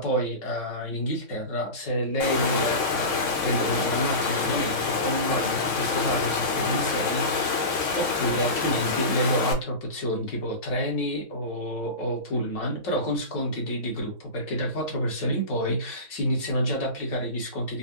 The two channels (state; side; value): late; right; 3.6 ms